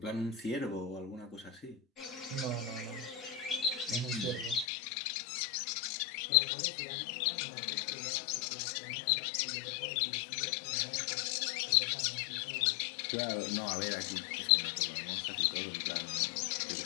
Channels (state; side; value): drops out; right; at 4.7 s